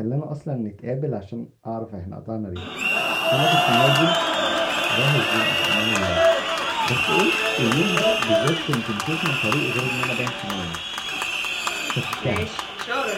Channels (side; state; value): both; identical; correlation 1.00